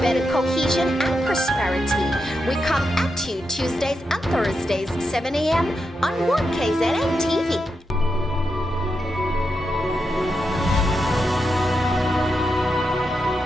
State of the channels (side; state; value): both; normal; correlation 0.86